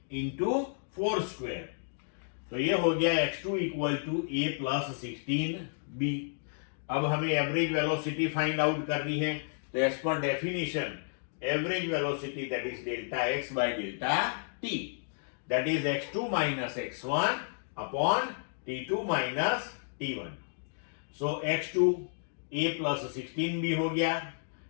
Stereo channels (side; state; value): right; silent; digital silence